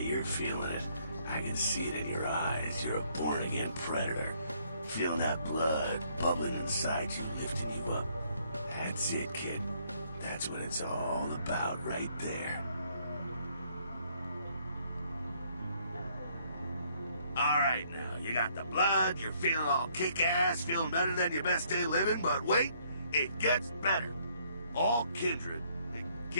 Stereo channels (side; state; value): both; inverted; correlation -0.67